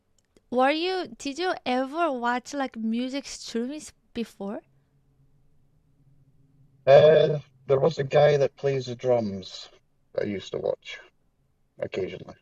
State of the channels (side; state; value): both; identical; correlation 1.00